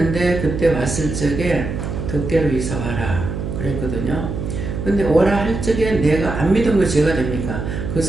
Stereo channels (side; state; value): right; noise; hum, 5 dB below the sound